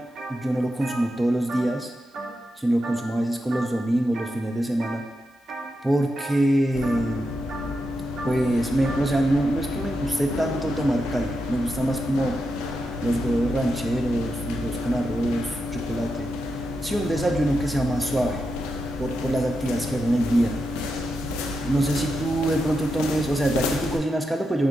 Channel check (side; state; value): both; normal; correlation 0.87